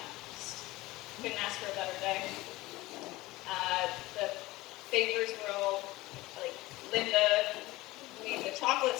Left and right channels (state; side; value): quieter; right; 19.4 dB